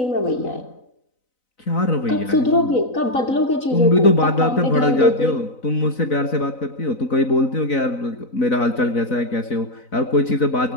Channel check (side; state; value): right; late; 4.0 ms